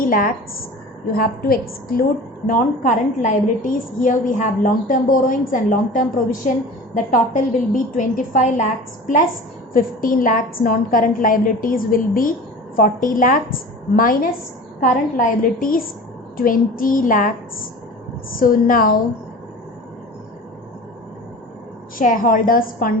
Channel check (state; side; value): normal; both; correlation 0.38